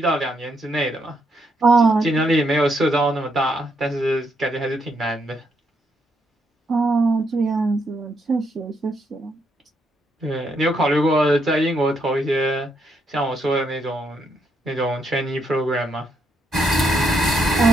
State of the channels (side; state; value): both; normal; correlation 0.77